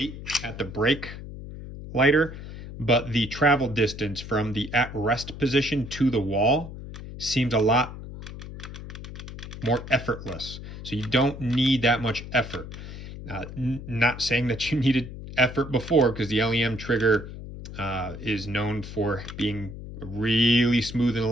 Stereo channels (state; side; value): noise; left; hum, 11 dB below the sound